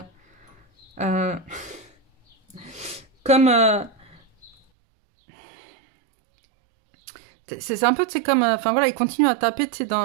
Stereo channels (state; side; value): drops out; left; at 4.5 s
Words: comme, c'est un peu, tu sais, comme, enfin voilà, il continue à taper, tu sais,